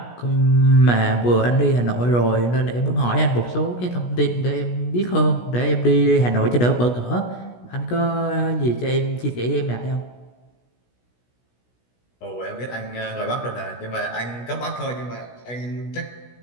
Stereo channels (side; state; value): right; late; 16 ms